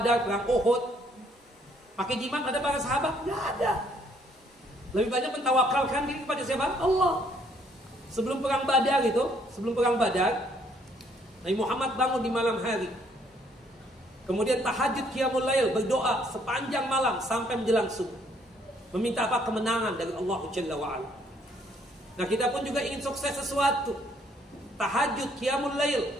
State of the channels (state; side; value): normal; both; correlation 0.66